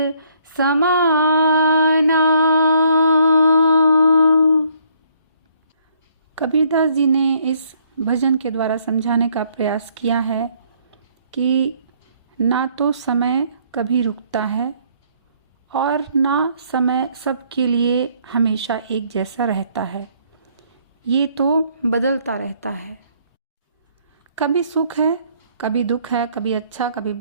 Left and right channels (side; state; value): both; inverted; correlation -0.65